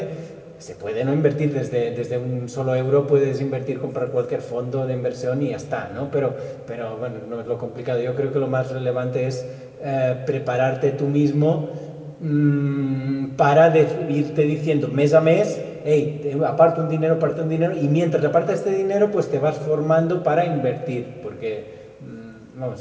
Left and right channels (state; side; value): identical; both; correlation 1.00